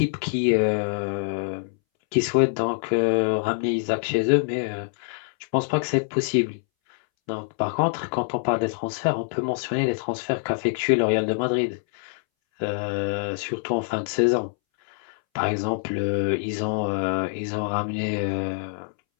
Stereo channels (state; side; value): silent; right; 62 dB below the other